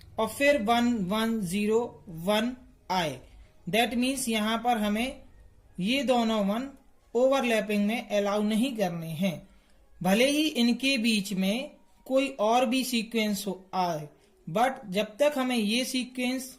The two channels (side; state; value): both; identical; correlation 1.00